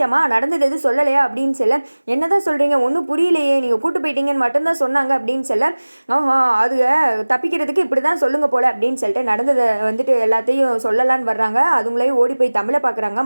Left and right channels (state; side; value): inverted; both; correlation -1.00